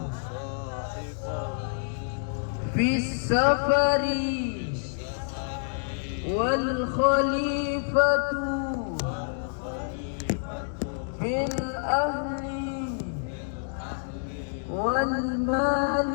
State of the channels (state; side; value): silent; right; digital silence